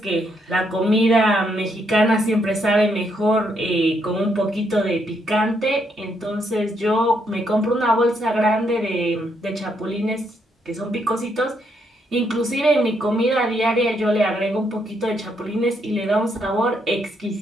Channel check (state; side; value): normal; both; correlation 0.75